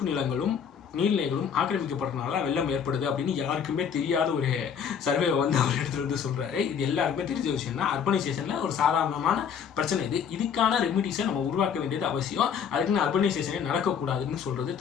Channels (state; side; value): quieter; right; 7.4 dB